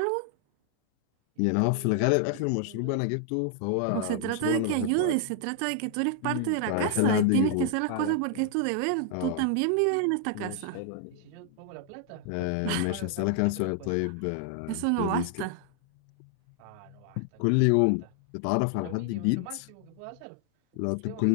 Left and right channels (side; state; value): both; different; correlation 0.00